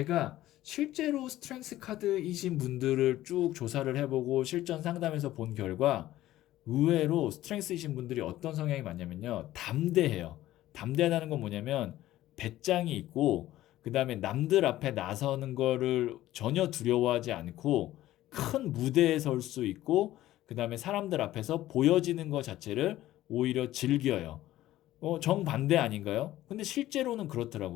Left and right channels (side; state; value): right; quieter; 14.8 dB